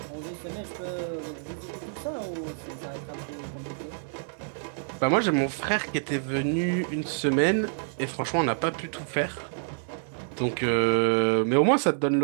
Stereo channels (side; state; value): left; silent; 58 dB below the other